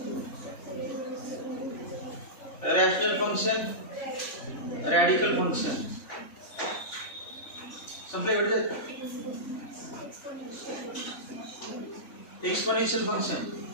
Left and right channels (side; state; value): right; late; 3.5 ms